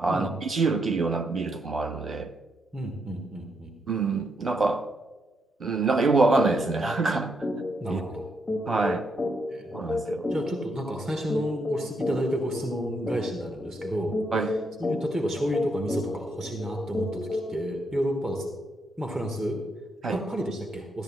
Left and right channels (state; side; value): normal; both; correlation 0.78